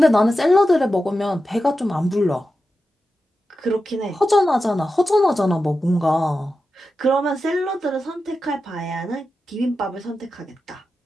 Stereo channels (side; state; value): both; normal; correlation 0.91